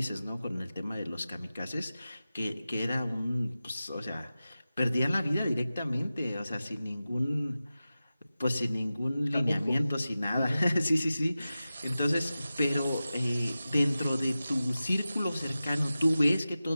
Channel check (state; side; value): inverted; both; correlation -0.94